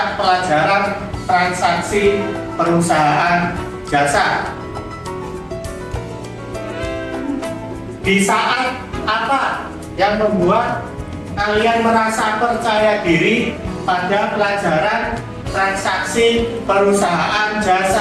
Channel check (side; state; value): both; identical; correlation 1.00